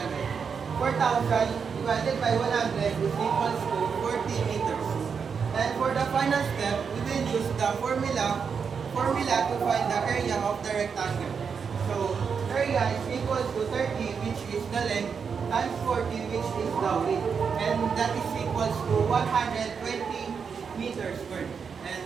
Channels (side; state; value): left; quieter; 6.2 dB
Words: 4,000 divided by 100 is equals to 40 meters. And for the final step, we will use the formula to find the area of the rectangle. So, area is equals to 30, which is the length, times 40, which is the width. And that is equals to 120 meters squared.